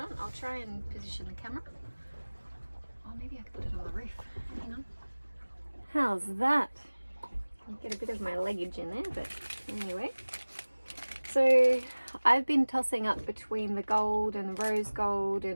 I'll try and position the camera. Oh, maybe I could put it on the roof. Hang on. How's that? I'll get a bit of my leggage in there, but anyway. So I've been tossing up between the gold and the rose gold,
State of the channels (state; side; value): inverted; both; correlation -1.00